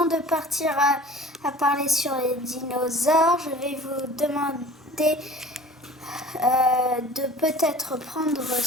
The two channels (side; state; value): both; normal; correlation 0.45